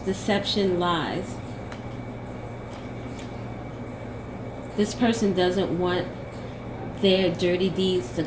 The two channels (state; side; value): identical; both; correlation 1.00